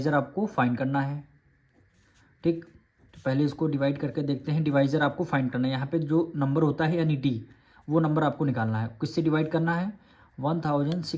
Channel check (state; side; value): identical; both; correlation 1.00